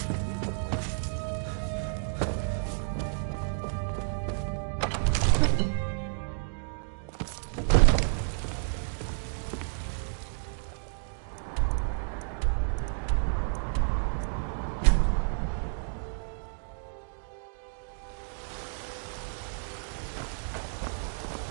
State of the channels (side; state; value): left; silent; digital silence